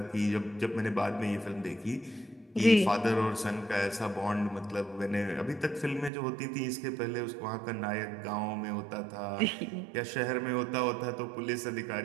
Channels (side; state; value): left; drops out; at 6.1 s